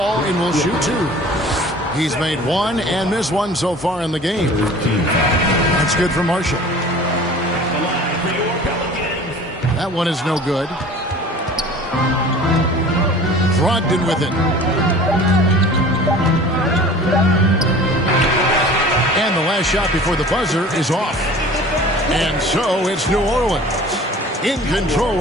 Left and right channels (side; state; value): both; normal; correlation 0.44